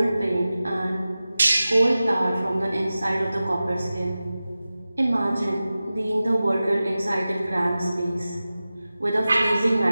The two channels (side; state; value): both; inverted; correlation -0.95